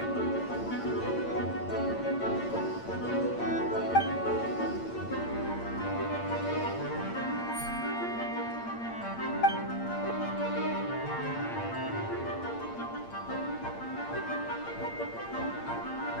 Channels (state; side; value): late; right; 8.7 ms